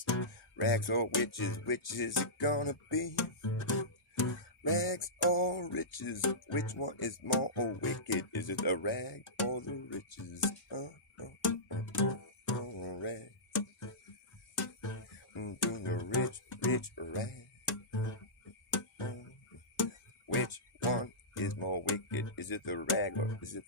rags or witches, which is it gonna be? Rags or riches, which one is more wicked? Is it the rag or the riches? Rags. To the rich rag. Which one is more wicked? Is it the rag or is it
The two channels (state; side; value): normal; both; correlation -0.17